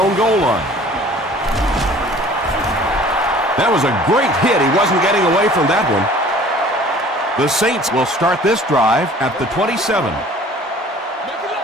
goal line. That was a great hit. He wasn't getting away from that one. The Saints will start this drive at the 27.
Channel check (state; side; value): normal; both; correlation 0.50